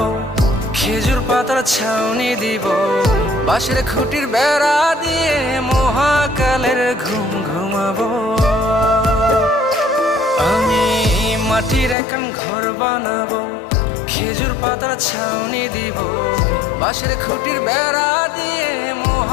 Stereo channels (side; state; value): right; drops out; at 12.0 s